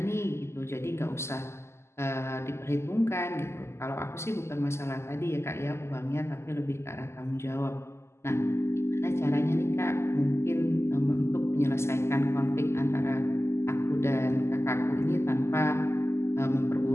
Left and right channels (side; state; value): right; late; 0.13 ms